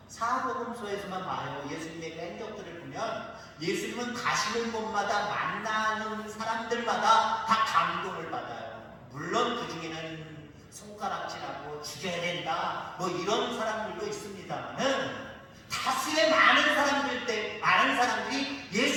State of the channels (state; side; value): identical; both; correlation 1.00